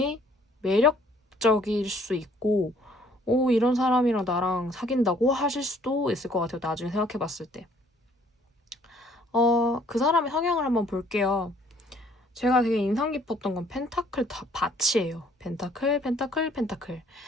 매력적일 수 있고 이런 사람이랑 나랑 사귄다고 하실 수도 있을 것 같아요. 나중에 생각해봤을 때. 그 사람의 성향을 한번 볼게요. 제가 되게 인상 깊었던 건 펜타클 밭이에요. 펜타클, 펜타클, 펜타클.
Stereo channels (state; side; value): normal; both; correlation 0.61